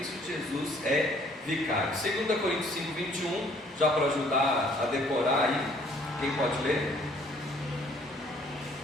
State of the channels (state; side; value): normal; both; correlation 0.60